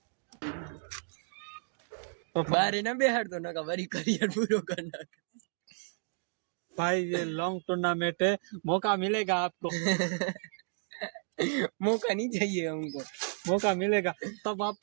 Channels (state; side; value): silent; left; digital silence